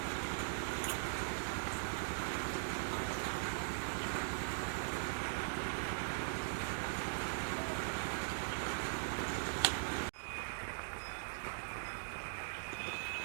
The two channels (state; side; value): silent; left; digital silence